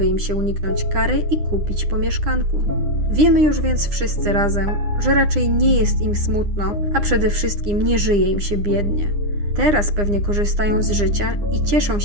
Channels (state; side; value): late; left; 9.8 ms